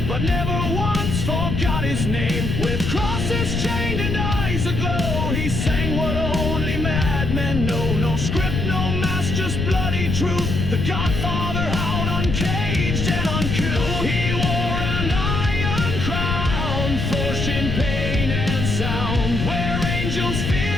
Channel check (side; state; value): left; noise; rumble, 1 dB below the sound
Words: but never once forgot his name. With crosses chained and eyes aglow, he sang what only madmen know. No script, no mask, just bloody truth. The Godfather howled uncaged and uncouth. He wore an iron crown, forged in pain and sound. Where angels